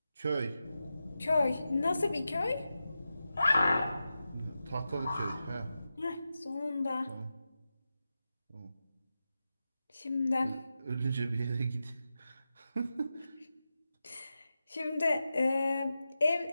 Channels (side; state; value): both; inverted; correlation -0.91